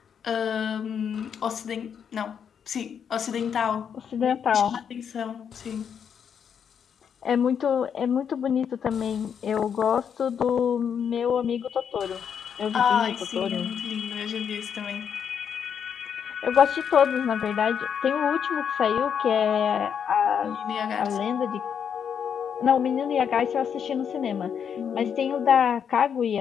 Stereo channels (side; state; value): right; quieter; 7.7 dB